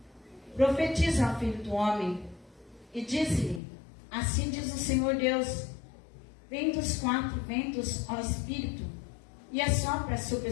profetiza ao Filho do homem, e disse-lhe: assim diz o Senhor Deus: vem dos quatro ventos ao Espírito, e assopra sobre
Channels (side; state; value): right; drops out; at 3.6 s